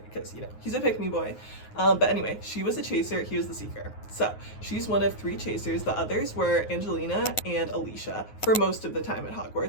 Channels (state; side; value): late; right; 9.5 ms